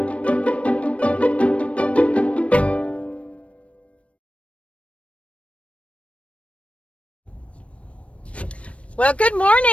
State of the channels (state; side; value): late; right; 0.063 ms